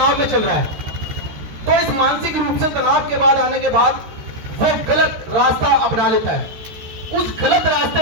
में चल रहा है। तो इस मानसिक रूप से तनाव के बाद आने के बाद वो गलत रास्ता अपना लेता है। उस गलत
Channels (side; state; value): left; late; 13 ms